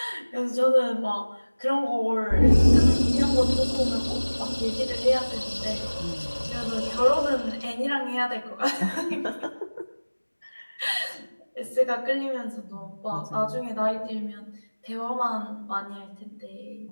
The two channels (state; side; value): inverted; both; correlation -1.00